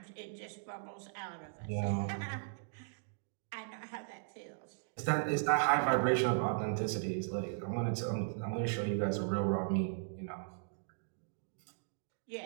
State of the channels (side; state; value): left; silent; digital silence